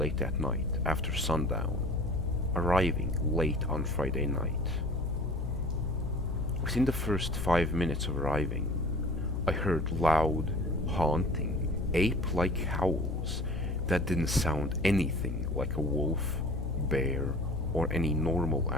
at night after sundown, arriving late on Friday night. Within the first 5 minutes of arriving, I heard loud, haunting, ape-like howls that didn't sound anything like a wolf, bear, or any normal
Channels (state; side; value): noise; left; hum, 3 dB below the sound